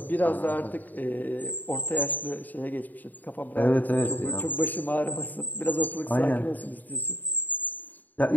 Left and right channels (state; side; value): late; right; 0.085 ms